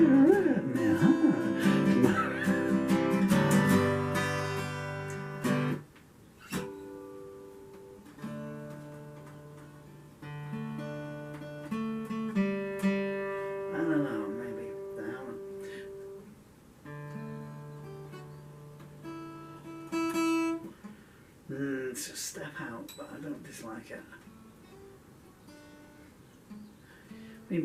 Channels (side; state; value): both; identical; correlation 1.00